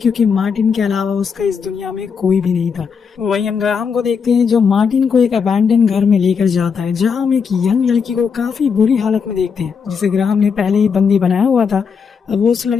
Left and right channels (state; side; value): quieter; right; 6.1 dB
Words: मार्टिन के अलावा उसका इस दुनिया में कोई भी नहीं था। वहीं हम ग्राहम को देखते हैं, जो मार्टिन को एक अबैंडन घर में लेकर जाता है, जहाँ हम एक यंग लड़की को काफी बुरी हालत में देखते हैं, जिसे ग्राहम ने पहले ही बंदी बनाया हुआ था। अब वो उस